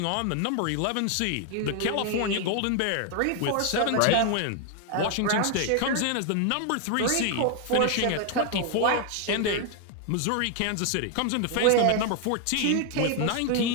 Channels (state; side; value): different; both; correlation 0.00